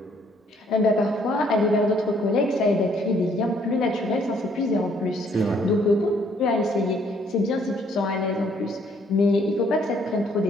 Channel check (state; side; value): normal; both; correlation 0.65